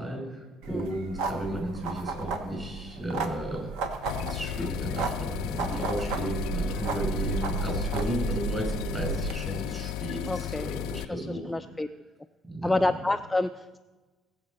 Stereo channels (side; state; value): both; normal; correlation 0.63